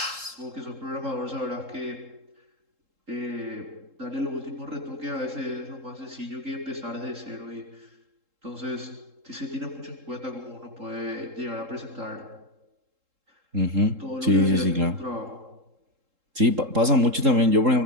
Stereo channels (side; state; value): left; late; 3.7 ms